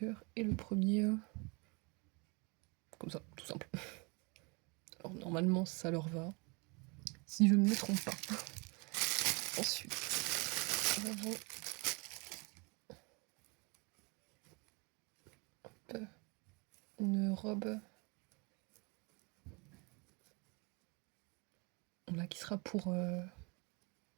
et le premier comme ça, tout simple. Alors normalement ça leur va, si je ne me trompe pas. Ensuite, nous avons une robe là qui sera pour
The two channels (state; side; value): quieter; left; 30.3 dB